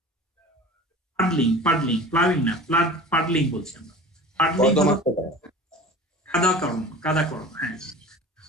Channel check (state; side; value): normal; both; correlation 0.39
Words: পাডলিং প্লাউইং না, পাডলিং বলছি আমরা। পাডলিং হলো কর্দমাক্ত করা। কাদাকরণ। হ্যাঁ,